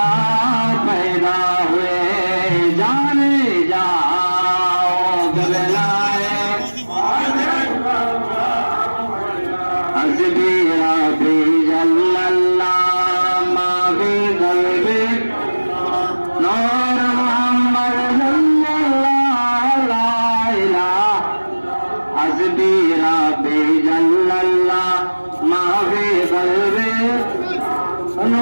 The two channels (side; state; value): both; inverted; correlation -1.00